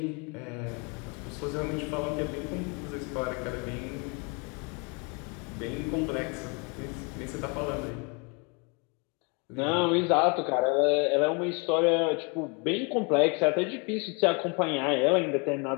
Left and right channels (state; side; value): quieter; right; 32.9 dB